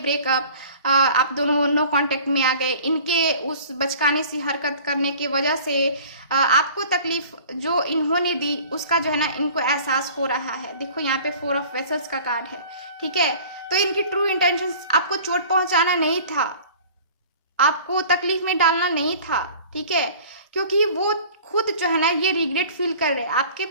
आप दोनों नो कांटेक्ट में आ गए, इनके उस बचकाने सी हरकत करने की वजह से आपको तकलीफ जो इन्होंने दी उसका जो है ना इनको एहसास हो रहा है। देखो यहाँ पे 4 ऑफ वेसल्स का कार्ड है, ठीक है। तो इनकी ट्रू इंटेंशंस आपको चोट पहुंचाना नहीं था, आपको तकलीफ में डालना नहीं था, ठीक है। क्योंकि वो खुद जो है ना ये रिग्रेट फील कर रहे हैं। आपके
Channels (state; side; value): inverted; both; correlation -0.46